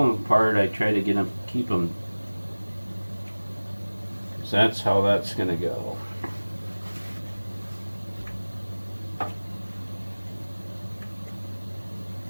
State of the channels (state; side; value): inverted; both; correlation -1.00